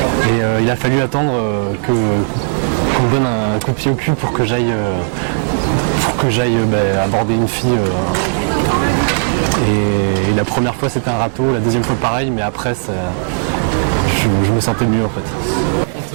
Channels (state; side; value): silent; left; digital silence